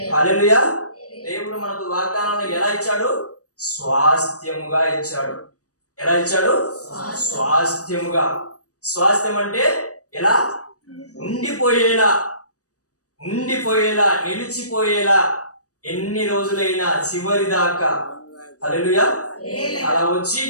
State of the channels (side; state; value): right; late; 0.66 ms